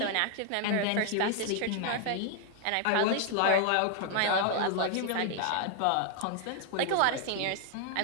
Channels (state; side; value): different; both; correlation 0.00